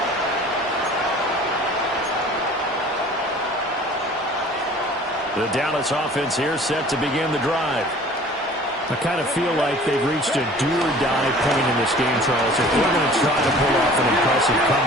The Dallas offense here set to begin the drive. I kind of feel like they've reached a do-or-die point in this game, Charles. If they're going to try to pull off an impressive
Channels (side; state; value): both; normal; correlation 0.47